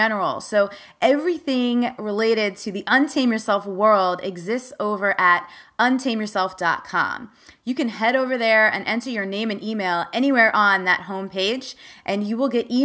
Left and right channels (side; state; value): both; identical; correlation 1.00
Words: So everything related to the Untame Yourself world exists over at untameyourself.com. You can head over there and enter your name and email anywhere on that homepage, and you will get